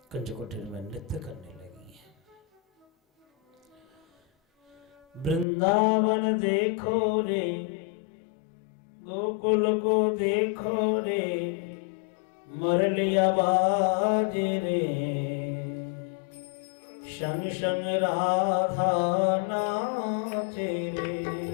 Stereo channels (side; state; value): right; drops out; at 5.5 s